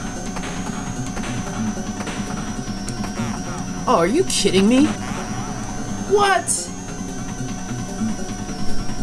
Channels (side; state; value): both; identical; correlation 1.00